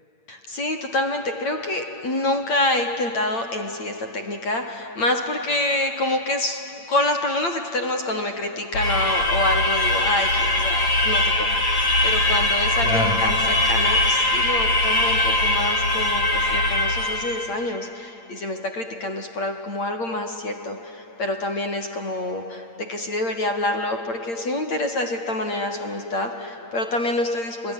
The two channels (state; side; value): late; right; 8.7 ms